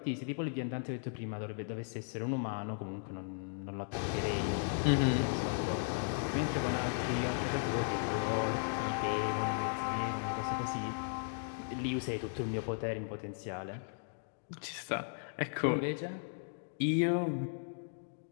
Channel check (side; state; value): right; silent; digital silence